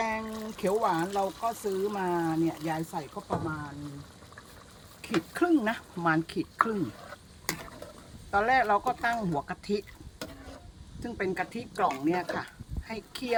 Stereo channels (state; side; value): identical; both; correlation 1.00